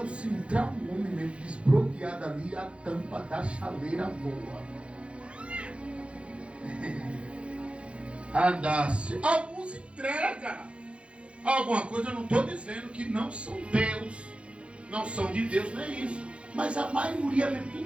se entrar um homem mesmo desbloqueado ali, a tampa da chaleira voa. Andasse. Alguns entregam alguma coisa, eu não estou dizendo que não são Deus, não são de Deus, não é isso. Mas a maioria mesmo,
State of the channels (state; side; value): late; left; 0.060 ms